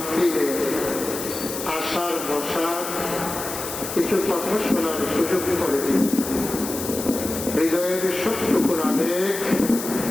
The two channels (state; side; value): noise; left; hiss, 7 dB below the sound